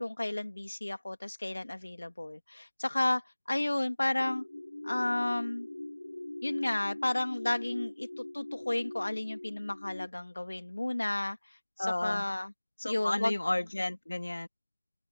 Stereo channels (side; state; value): both; inverted; correlation -1.00